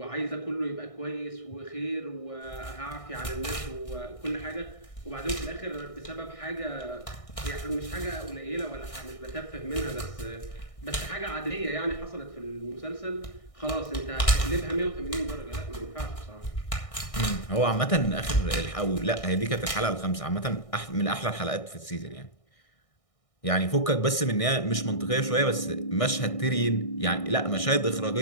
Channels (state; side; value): late; right; 1.6 ms